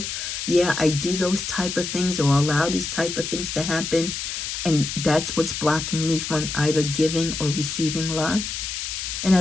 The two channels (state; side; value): noise; left; hiss, 5 dB below the sound